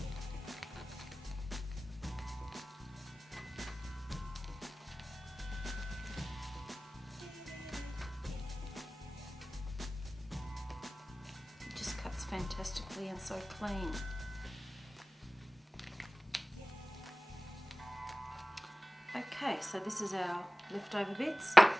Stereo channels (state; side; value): normal; both; correlation 0.97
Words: Fantastically and so clean. Okay, so this is our leftover bits.